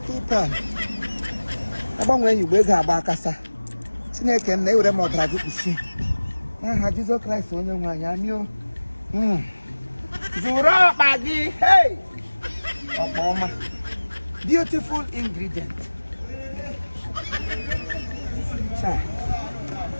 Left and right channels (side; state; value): both; inverted; correlation -1.00